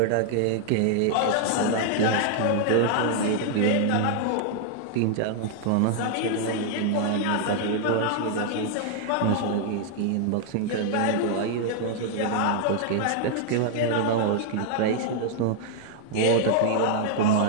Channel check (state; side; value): different; both; correlation 0.00